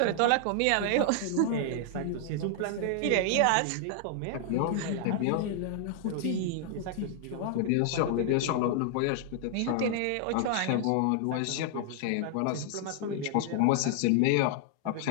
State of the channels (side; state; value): both; different; correlation 0.00